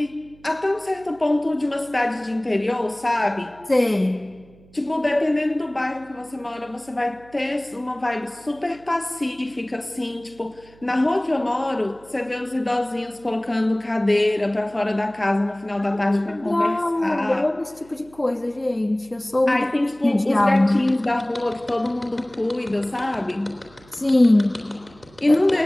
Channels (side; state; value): right; noise; hum, 26 dB below the sound